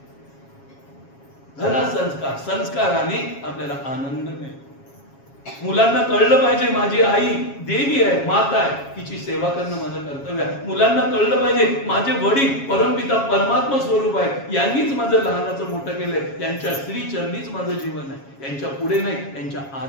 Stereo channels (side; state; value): right; late; 7.3 ms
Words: घरा संस्काराने आपल्याला आनंद मिळतो. मुलांना कळलं पाहिजे, माझी आई देवी आहे, माता आहे, तिची सेवा करणं माझं कर्तव्य आहे. मुलांना कळलं पाहिजे, माझे वडील परमपिता परमात्मा स्वरूप आहे, यांनीच माझं लहानाचं मोठं केलंय, त्यांच्या श्री चरणीच माझं जीवन आहे, यांच्या पुढे नाही, यांच्या